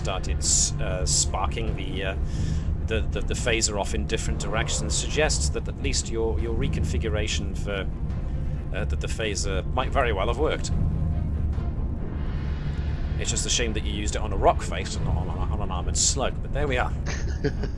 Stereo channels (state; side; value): identical; both; correlation 1.00